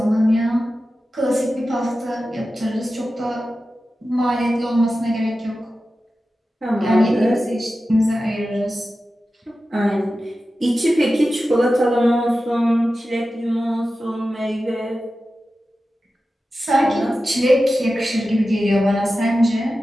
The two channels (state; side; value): normal; both; correlation 0.93